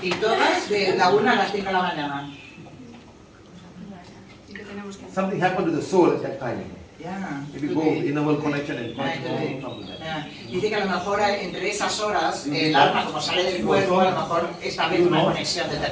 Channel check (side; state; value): both; identical; correlation 1.00